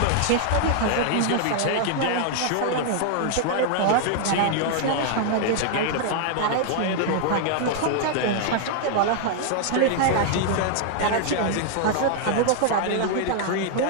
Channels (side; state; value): both; different; correlation 0.00